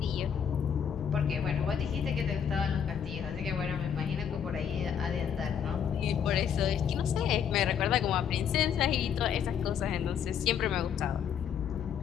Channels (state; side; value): quieter; right; 8.1 dB